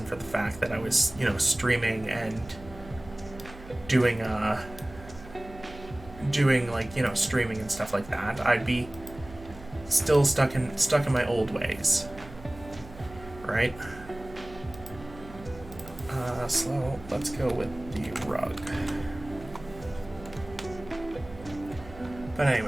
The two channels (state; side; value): noise; right; hum, 17 dB below the sound